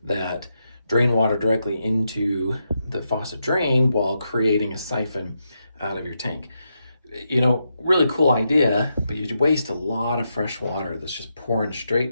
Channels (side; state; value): both; inverted; correlation -0.84